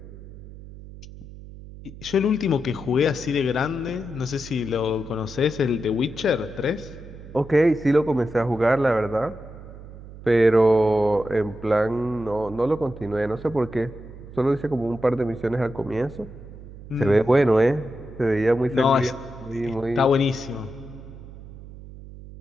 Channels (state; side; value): noise; right; hum, 16 dB below the sound